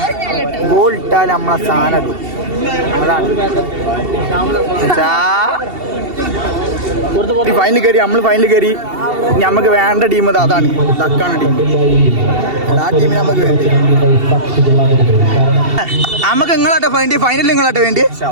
നമ്മളെ സാധനം ഇടും അതാണ് ഫൈനൽ കയറി നമുക്ക് വേണ്ട ടീം അതാണ് തക്കാണ് ടീം ആ ടീമിന് നമുക്ക് വേണ്ടി നമുക്ക് നിങ്ങളാട്ടെ വേണ്ടി ഫൈനലിൽ നിങ്ങളാട്ടെ വേണ്ടി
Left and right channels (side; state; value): left; late; 2.7 ms